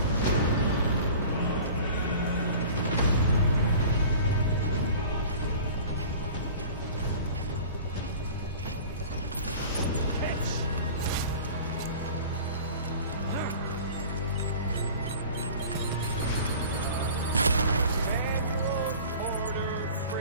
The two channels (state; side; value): inverted; both; correlation -0.42